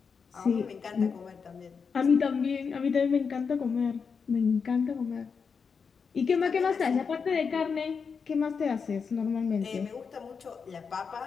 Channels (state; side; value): quieter; right; 5.7 dB